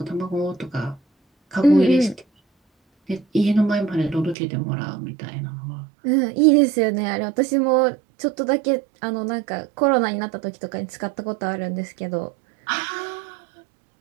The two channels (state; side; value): drops out; left; at 4.4 s